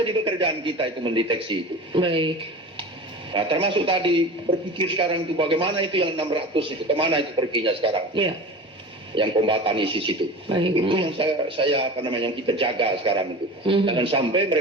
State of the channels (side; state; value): both; normal; correlation 0.33